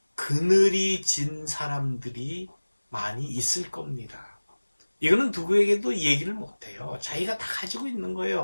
그늘이 진 사람들이 많이 있을 겁니다. 이거는 누구에게도 얘기를 못해요. 자기가 다 가지고 있는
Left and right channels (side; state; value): both; inverted; correlation -1.00